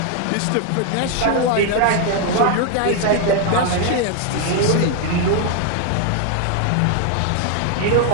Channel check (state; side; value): different; both; correlation 0.00